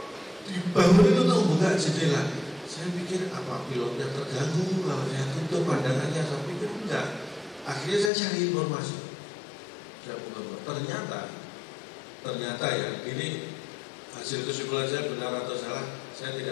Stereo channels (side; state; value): right; drops out; at 8.1 s